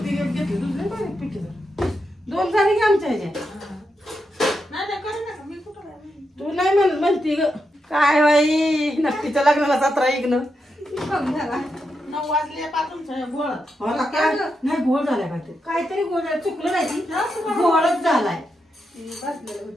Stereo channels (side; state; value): both; normal; correlation 0.85